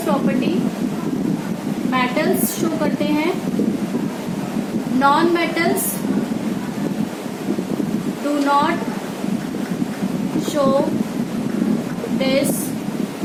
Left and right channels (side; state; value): both; identical; correlation 1.00